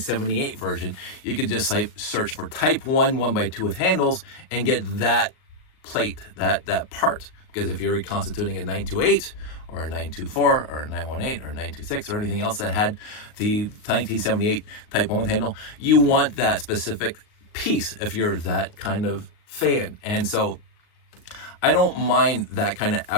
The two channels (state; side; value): late; right; 38 ms